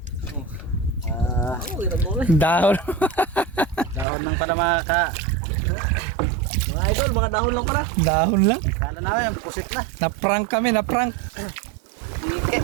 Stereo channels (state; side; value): drops out; left; at 4.0 s